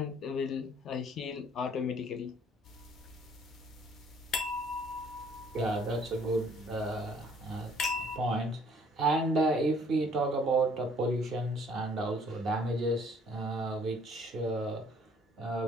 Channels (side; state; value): both; normal; correlation 0.59